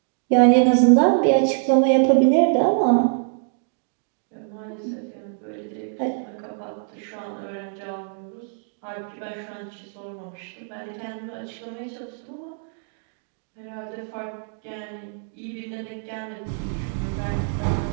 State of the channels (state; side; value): silent; left; digital silence